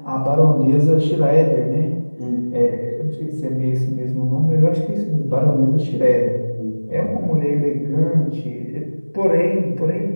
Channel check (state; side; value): inverted; both; correlation -1.00